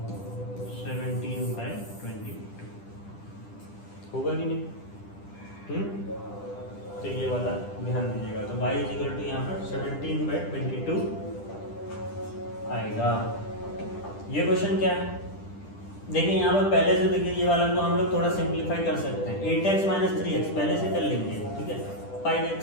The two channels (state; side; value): late; right; 10 ms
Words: 17/22 होगा कि नहीं? तो ये वाला ध्यान दीजिएगा, तो y इज इक्वल टू यहाँ पर 17/22 आएगा। ये क्वेश्चन क्या है, देखिए यहाँ पर पहले से देखिए, ये वाला को हम लोग थोड़ा सिंप्लीफाई कर सकते हैं। 8x माइनस 3x पहले से कर लेंगे। ठीक है, 5x